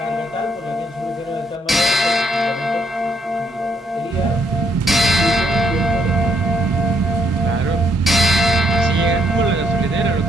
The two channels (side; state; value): both; normal; correlation 0.73